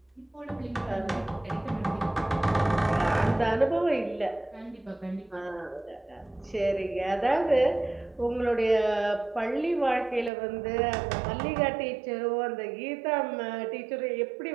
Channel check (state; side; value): drops out; left; at 10.3 s